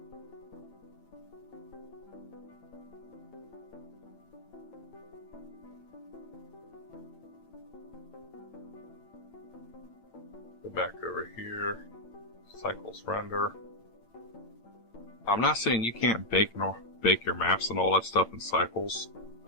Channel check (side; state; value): right; late; 8.9 ms